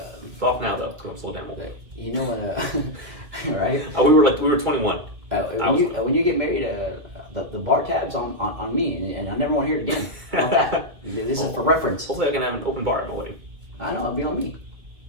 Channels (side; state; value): left; late; 2.4 ms